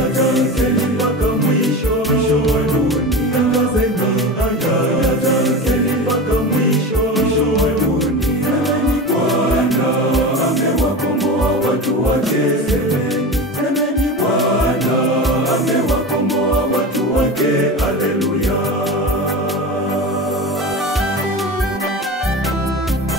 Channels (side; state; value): both; normal; correlation 0.27